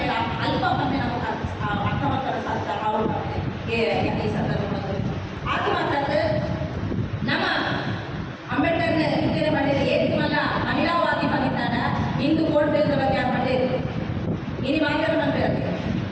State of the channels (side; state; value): both; identical; correlation 1.00